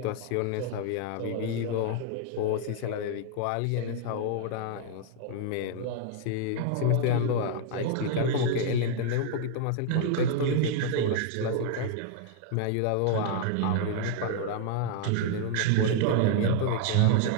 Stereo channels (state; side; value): different; both; correlation 0.00